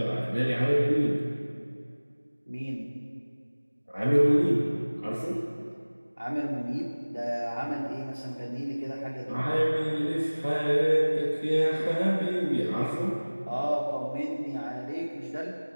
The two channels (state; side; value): inverted; both; correlation -1.00